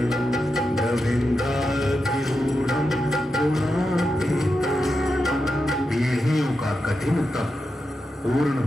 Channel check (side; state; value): both; normal; correlation 0.88